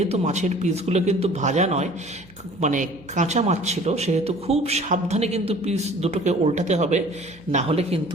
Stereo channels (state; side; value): noise; right; hum, 26 dB below the sound